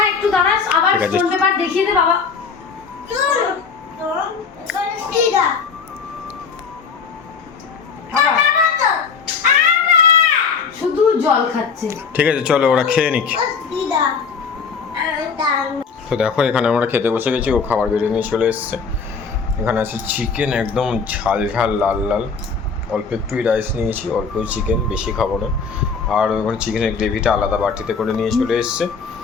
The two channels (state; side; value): quieter; right; 5.5 dB